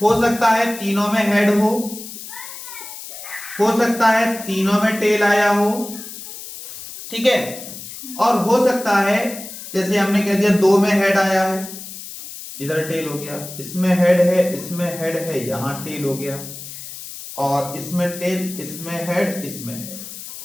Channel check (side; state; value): left; noise; hiss, 12 dB below the sound